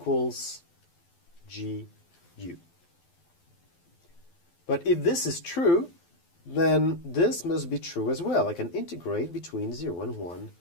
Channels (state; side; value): late; right; 12 ms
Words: gu. But if this is true, then this must be true as well. I can integrate between 0 and 1